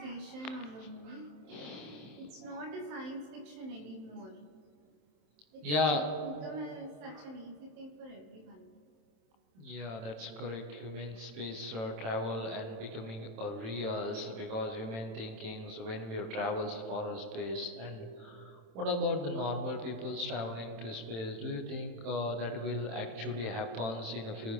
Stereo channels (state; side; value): late; left; 27 ms